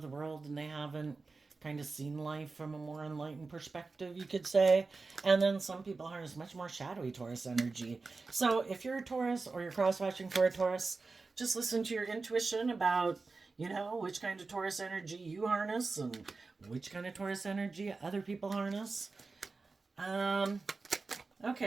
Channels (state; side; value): quieter; left; 4.0 dB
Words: the world and they haven't kind of seen life from a more enlightened perspective, you could say. And then some people harness much more shadowy Taurus energy. So if you're a Taurus or you're cross watching for a Taurus, just listen to your intuition about, which kind of Taurus energy you harness and which kind of Taurus energy other people harness.